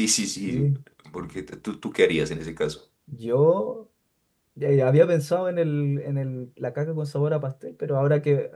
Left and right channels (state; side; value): identical; both; correlation 1.00